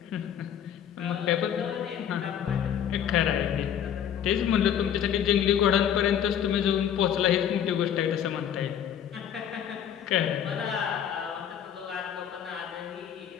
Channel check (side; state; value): right; quieter; 9.2 dB